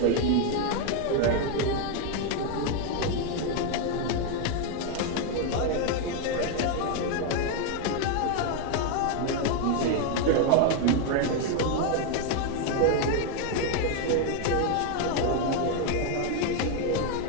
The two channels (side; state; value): both; different; correlation 0.01